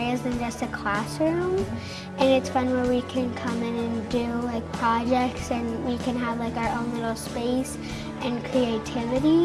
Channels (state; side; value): identical; both; correlation 1.00